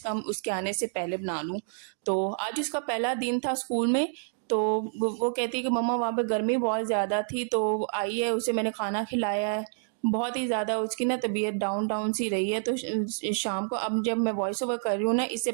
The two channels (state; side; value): silent; left; digital silence